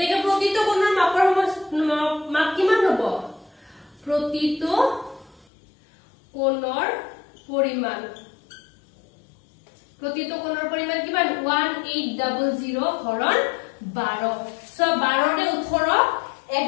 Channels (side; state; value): right; drops out; at 5.5 s